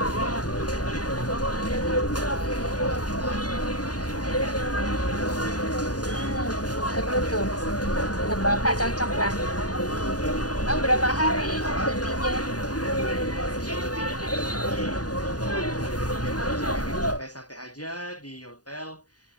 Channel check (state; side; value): late; right; 0.68 ms